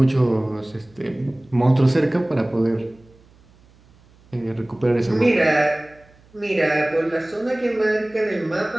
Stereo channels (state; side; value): noise; right; hum, 29 dB below the sound